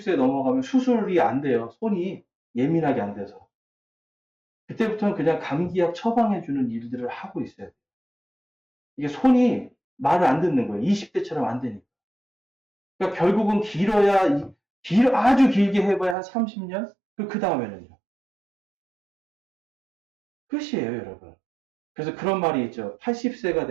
넘어가면 수술이 안 돼요. 손이 예민하게 안 돼서. 그때부터는 그냥 감기약 처방해주는 일들을 하고 있어요. 이게 손이 말을 안 듣는 거예요. 20대처럼 안 되니까. 그러니까 결국은 아주 길게 해봐야 한 30년? 그 다음에는요. 끝이에요, 여러분. 그래서 그런 말이 있죠. 80세가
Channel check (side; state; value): left; drops out; at 16.2 s